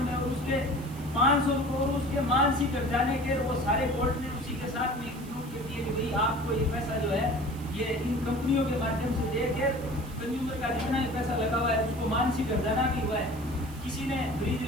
और उसके 500 रुपए और उसके मानसिक हर्जाने के वो सारे कोर्ट ने उसी के साथ में इंक्लूड कर दिए कि भाई आपको ये पैसा जो है ये इन कंपनियों के माध्यम से देकर कंज्यूमर का जितना भी पैसा लगा हुआ है उसको मानसिक हर्जाना भी हुआ है। किसी ने फ्रिज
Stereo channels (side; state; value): right; noise; hiss, 20 dB below the sound